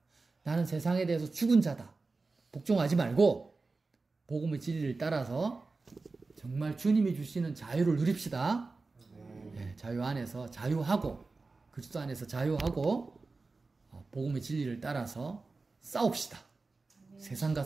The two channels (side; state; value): left; quieter; 3.8 dB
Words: 나는 세상에 대해서 죽은 자다. 복종하지 말고 복음의 진리를 따라서 정말 주님이 주시는 자유를 누립시다. 네, 자유 안에서 자유하고 그리스도 안에서 자유하고 복음의 진리를 따라서 싸웁시다. 세상과